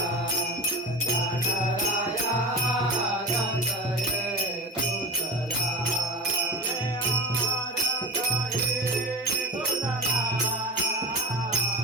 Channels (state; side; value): normal; both; correlation 0.29